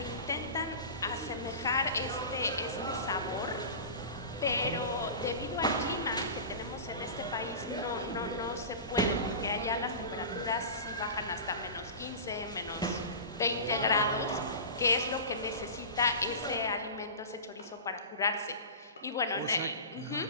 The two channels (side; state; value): both; inverted; correlation -0.31